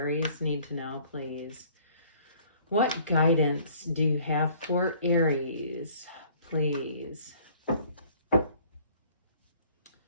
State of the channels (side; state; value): both; inverted; correlation -0.55